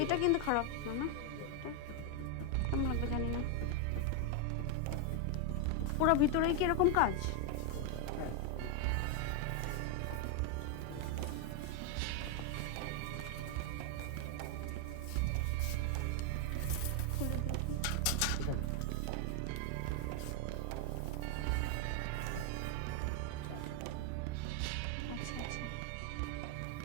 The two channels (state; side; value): different; both; correlation 0.01